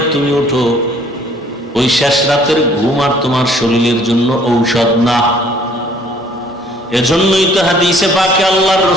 তুমি উঠো, ওই শেষ রাতের ঘুম আর তোমার শরীরের জন্য ঔষধ না। এজন্যই তো হাদিসে পাকে আল্লাহর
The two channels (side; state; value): both; normal; correlation 0.58